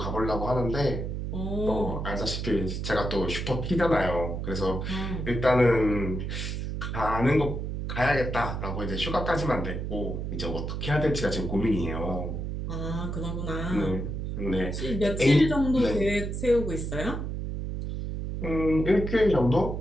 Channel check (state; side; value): noise; right; hum, 4 dB below the sound